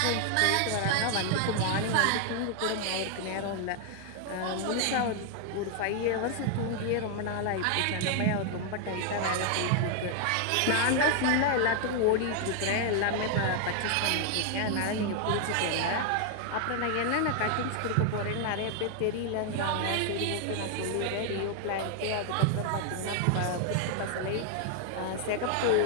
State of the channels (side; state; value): both; different; correlation 0.00